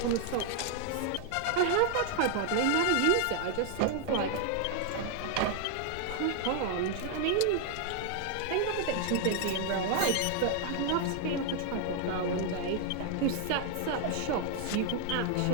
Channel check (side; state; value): both; different; correlation 0.00